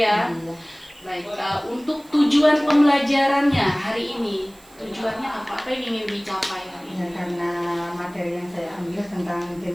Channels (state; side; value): noise; right; hiss, 26 dB below the sound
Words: Iya. Baik, untuk tujuan pembelajarannya hari ini, tujuannya apa? Apa yang ingin dicapai hari Ya, ini? karena materi yang saya ambil tentang